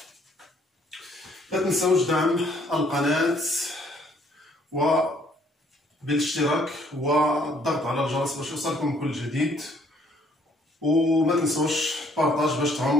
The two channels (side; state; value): both; normal; correlation 0.64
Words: لا تنسوش دعم القناة بالاشتراك والضغط على الجرس باش يوصلكم كل جديد، وما تنسوش بارطاج باش